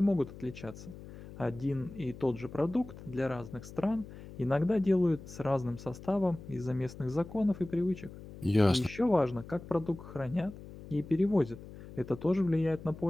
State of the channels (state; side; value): noise; left; hum, 15 dB below the sound